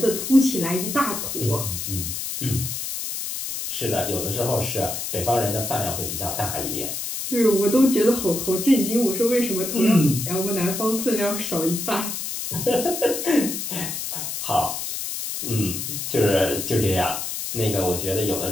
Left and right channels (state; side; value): noise; left; hiss, 4 dB below the sound